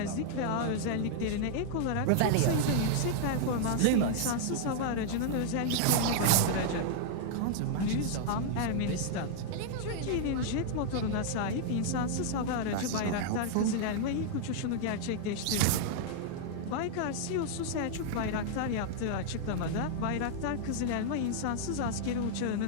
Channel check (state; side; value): different; both; correlation -0.01